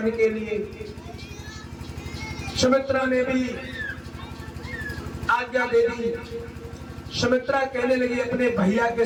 के लिए। सुमित्रा ने भी आज्ञा दे दी। सुमित्रा कहने लगी अपने भैया के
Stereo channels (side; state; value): both; identical; correlation 1.00